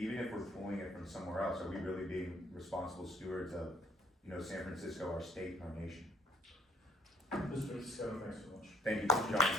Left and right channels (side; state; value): both; normal; correlation 0.61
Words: we're pulling it from somewhere else, are we really being responsible stewards of, you know, San Francisco, our state and our nation? Mr. Scott, thanks so much. Thank you, Mr.